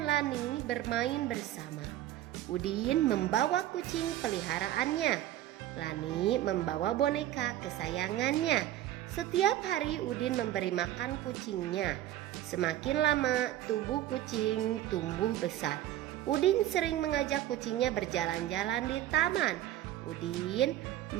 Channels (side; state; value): left; quieter; 13.3 dB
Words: Lani bermain bersama. Udin membawa kucing peliharaannya. Lani membawa boneka kesayangannya. Setiap hari Udin memberi makan kucingnya. Semakin lama tubuh kucing tumbuh besar. Udin sering mengajak kucingnya berjalan-jalan di taman. Udin